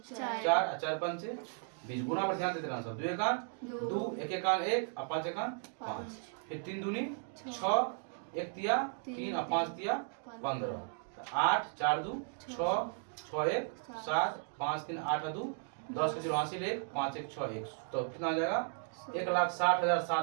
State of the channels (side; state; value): left; silent; 54 dB below the other